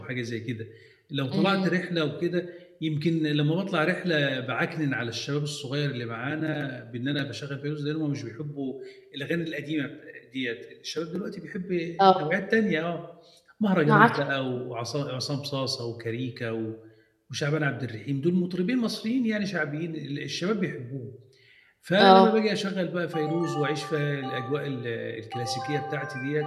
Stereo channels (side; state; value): both; identical; correlation 1.00